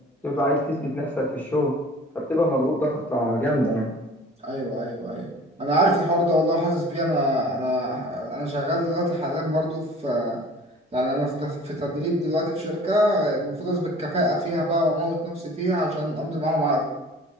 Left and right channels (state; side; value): normal; both; correlation 0.46